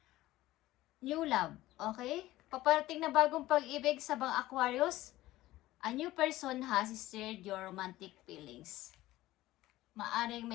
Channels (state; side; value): quieter; right; 16.5 dB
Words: new love. Okay? Paparating na bagong pag-ibig sa mga Aquarius. A new person has stirred your romantic feelings. Maaring